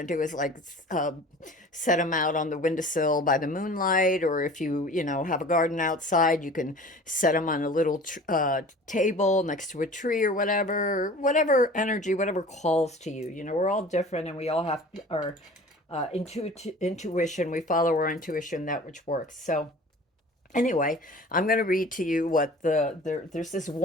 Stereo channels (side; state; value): both; normal; correlation 0.43